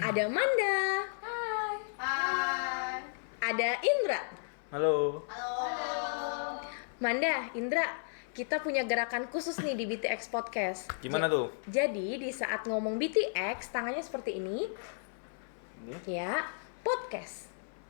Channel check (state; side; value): silent; right; 55 dB below the other